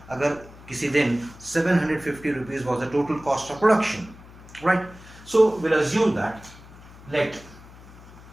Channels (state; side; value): noise; left; hum, 20 dB below the sound